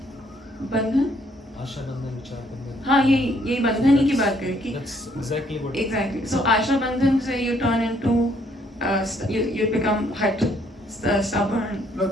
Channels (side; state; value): both; normal; correlation 0.67